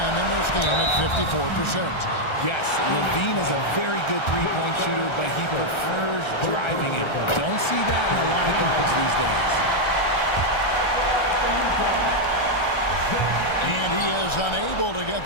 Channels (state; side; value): late; right; 1.3 ms